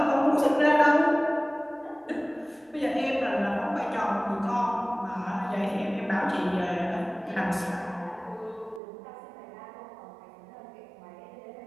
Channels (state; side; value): drops out; left; at 8.8 s